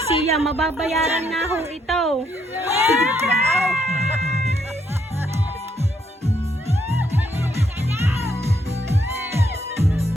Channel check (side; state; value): both; normal; correlation 0.73